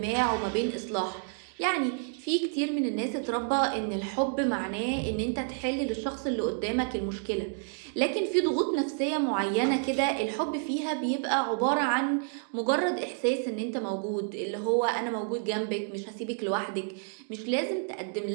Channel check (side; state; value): left; silent; 57 dB below the other